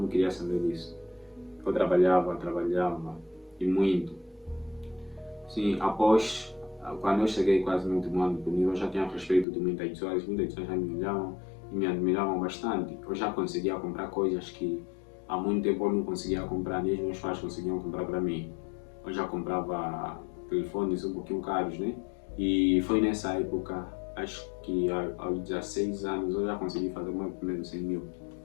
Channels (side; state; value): right; drops out; at 9.5 s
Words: queria saber disso. Eu trabalhava e muito. Sim, após, quando eu cheguei quase no último ano comigo, eu já tinha respeito de muitas pessoas já me olhavam e me admiravam bastante. Eu já conseguia comprar coisas que há muito tempo eu não conseguia comprar, nem os meus pais conseguiam comprar para mim. Eu já comprava telefones um pouquinho caros, né? E foi nessa época, acho que aos 16 anos eu já consegui fazer o meu primeiro 100 mil.